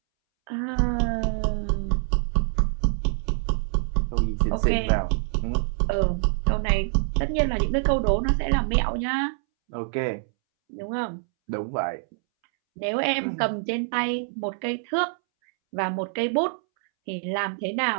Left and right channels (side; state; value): left; silent; 61 dB below the other